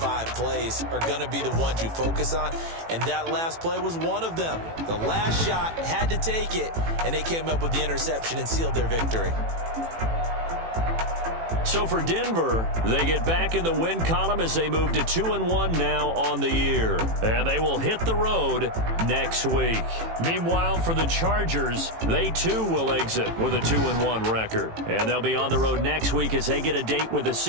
plays are going to be the ones you focus on. And that last play was one of them. The last shot had to take it, and they came up with the interception and sealed their victory. So for Denver, they get back in the win column as they move to 2-1 now on the year. And they will hit the road next week. Meanwhile, for the Chargers, they too will exit with a 2-1 record. And they'll be on the road next week as they get a date with the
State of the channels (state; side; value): late; left; 18 ms